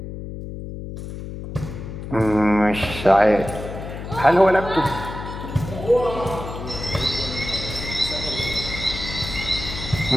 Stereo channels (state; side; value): noise; left; hum, 9 dB below the sound